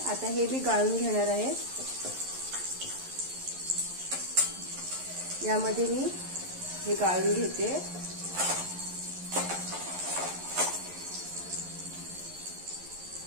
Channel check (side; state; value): left; late; 11 ms